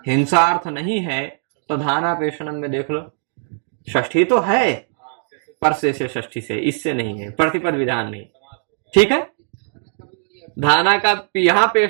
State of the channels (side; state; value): left; silent; digital silence